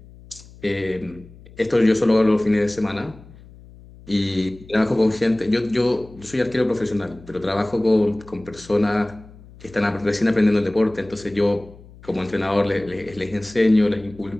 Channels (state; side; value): noise; left; hum, 21 dB below the sound